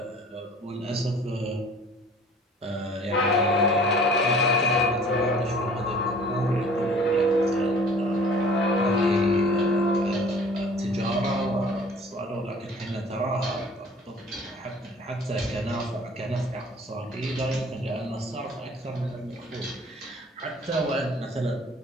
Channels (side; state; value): both; normal; correlation 0.50